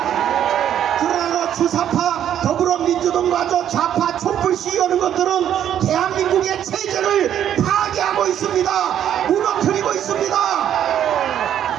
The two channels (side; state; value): left; quieter; 10.2 dB